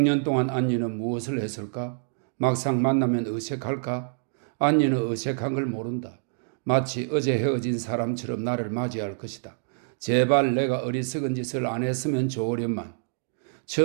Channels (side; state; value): left; silent; digital silence